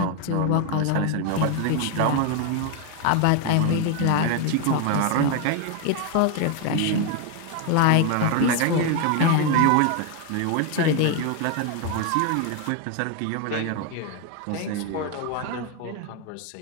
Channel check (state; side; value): different; both; correlation 0.01